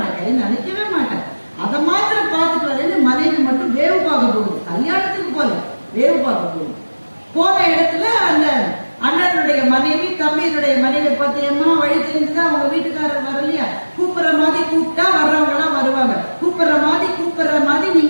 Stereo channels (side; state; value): both; inverted; correlation -1.00